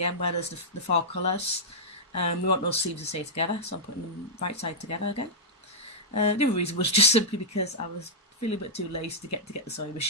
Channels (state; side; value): normal; both; correlation -0.09